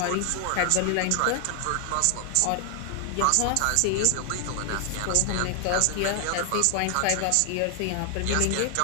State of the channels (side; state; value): both; different; correlation 0.00